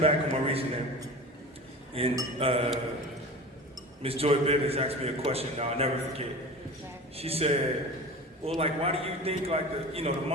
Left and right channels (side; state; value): both; normal; correlation 0.34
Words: of my reasoning, and Miss Joy Bivens asked me a question. Now I'll never forget. She said, "Well, like, why do you think like the